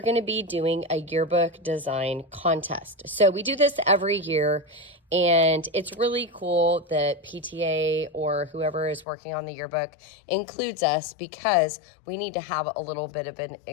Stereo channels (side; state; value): right; drops out; at 9.1 s